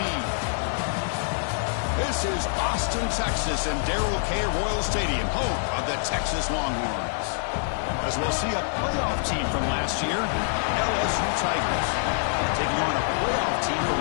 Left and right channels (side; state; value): right; silent; digital silence